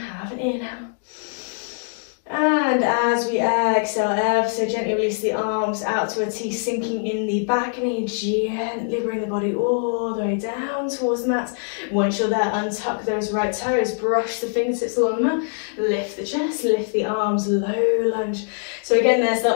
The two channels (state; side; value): silent; right; digital silence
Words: an inhale. And as we exhale, ever so gently release the arms out to a T, sinking in the back knee. Gently bring the body all the way down towards the mat. Once you're there, untuck those right toes, brush the fingertips along the mat, lift the chest, lift the arms, low lunge. So again, there's the